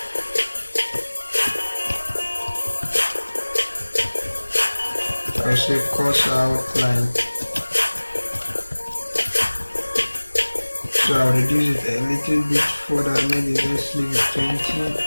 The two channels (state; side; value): inverted; both; correlation -1.00